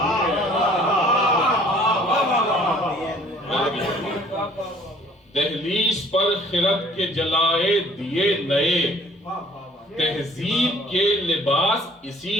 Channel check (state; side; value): normal; both; correlation 0.55